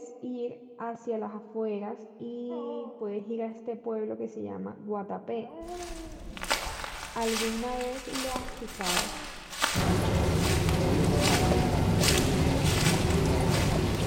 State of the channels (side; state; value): both; identical; correlation 1.00